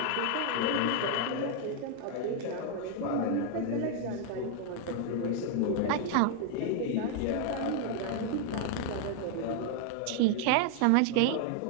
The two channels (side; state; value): both; different; correlation 0.00